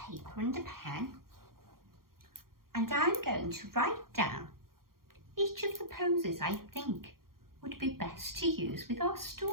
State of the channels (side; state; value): left; late; 0.92 ms